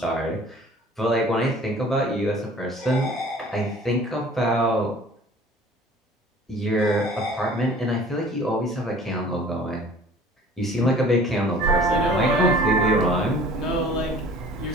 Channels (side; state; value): both; normal; correlation 0.48